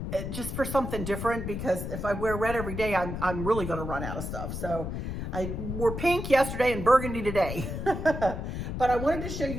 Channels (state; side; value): noise; left; rumble, 5 dB below the sound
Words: just for something different, because if I wear red every day, I'm really going to run out of stuff. So I wore pink yesterday and burgundy today. But I wanted to show